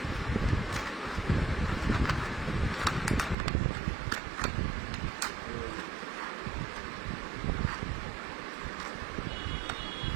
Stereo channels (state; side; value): drops out; left; at 3.4 s